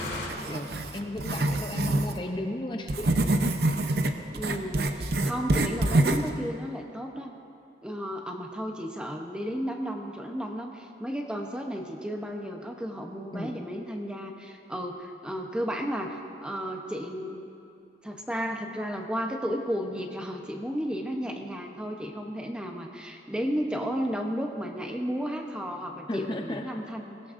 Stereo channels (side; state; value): both; normal; correlation 0.79